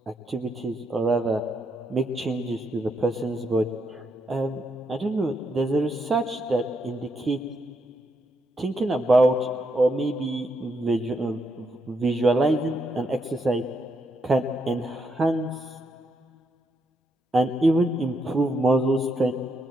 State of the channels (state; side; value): normal; both; correlation 0.79